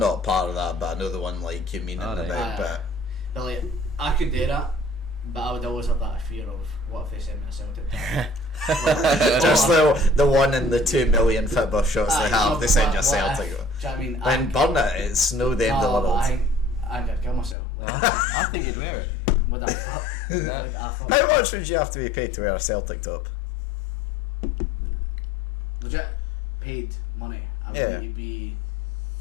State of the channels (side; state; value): right; drops out; at 17.6 s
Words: part of that, but I know the one like you mean about, but But like, I could do that, but I would always have that fear of what if they send me a Celtic top. just the one in the 2 million football shots they have, they send you a Celtic. Do you know what I mean? Then burn it, it's no the end of the world. I think I'd kill myself. I think you'd wear it. Would I fuck? How much would you have to be paid to wear a Celtic top? Legit paid money. I would Yeah. need to be.